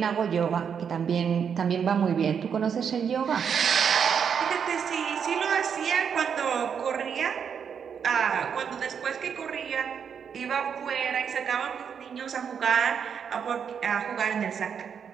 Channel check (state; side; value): quieter; left; 7.2 dB